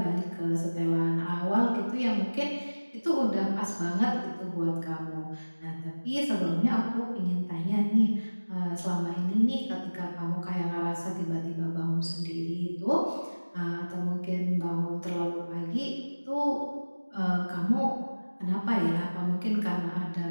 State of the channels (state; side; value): inverted; both; correlation -1.00